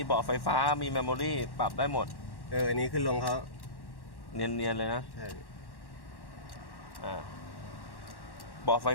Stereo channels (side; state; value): right; late; 1.1 ms